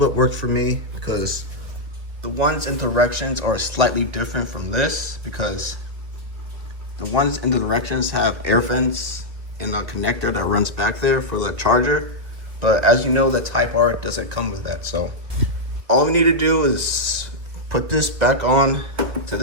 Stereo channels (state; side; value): late; left; 2.4 ms